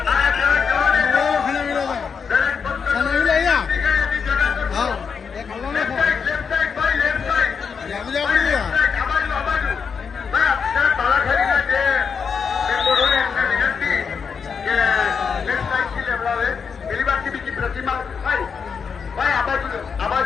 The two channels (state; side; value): quieter; right; 6.1 dB